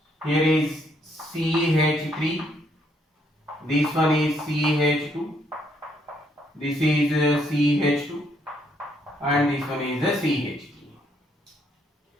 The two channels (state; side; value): normal; both; correlation 0.71